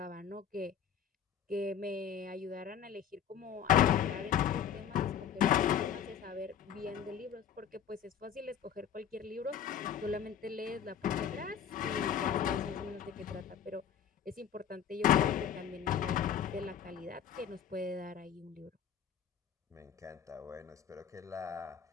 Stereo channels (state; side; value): quieter; right; 8.6 dB